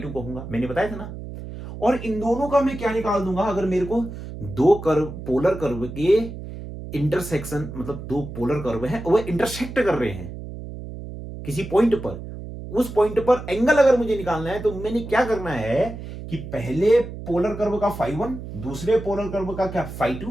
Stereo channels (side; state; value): right; noise; hum, 10 dB below the sound